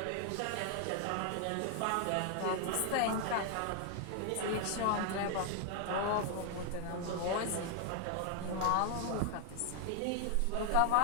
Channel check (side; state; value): both; different; correlation 0.00